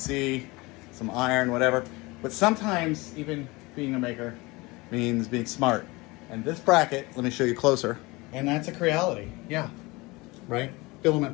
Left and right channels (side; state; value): right; quieter; 23.5 dB